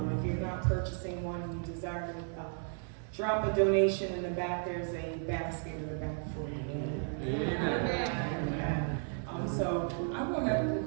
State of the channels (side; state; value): left; silent; 55 dB below the other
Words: If you're not purchasing one and you desire to drop a donation in the back, there's a basket in the back for you. So I want to